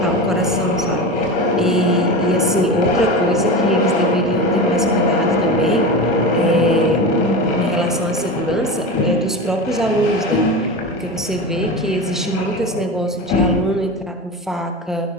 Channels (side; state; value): both; normal; correlation 0.26